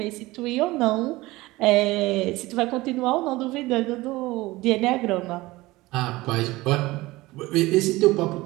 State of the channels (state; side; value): quieter; left; 19.8 dB